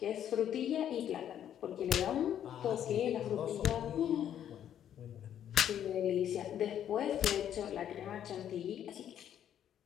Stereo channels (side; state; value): right; quieter; 10.1 dB